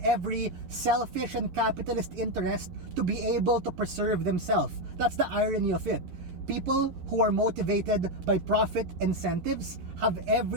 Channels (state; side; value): late; left; 11 ms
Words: every selfish and capitalist interest to be able to preserve themselves. That's the irony of it. People who are motivated by profit incentives have